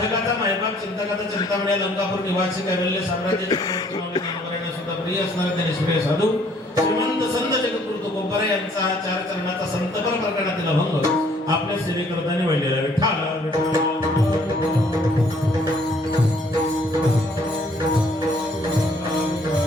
मायबाप चिंतकाचा चिंतामणी लंकापूर निवासी कैवल्य साम्राज्याचे ज्ञानवरायांना सुद्धा प्रिय असणारे ते निष्क्रिय साधू श्रीमंत संत जगद्गुरु तुकोबाराय यांचा हा चार चरणाचा संतपर प्रकरणातील अभंग आपल्या सेवेकरताने वाढलेला विठ्ठल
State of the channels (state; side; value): normal; both; correlation 0.62